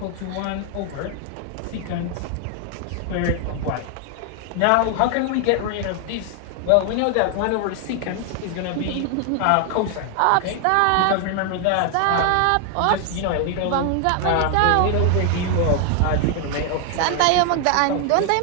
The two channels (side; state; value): both; different; correlation 0.00